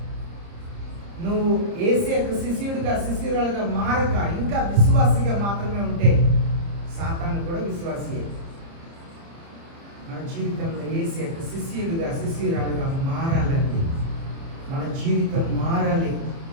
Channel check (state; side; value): late; left; 30 ms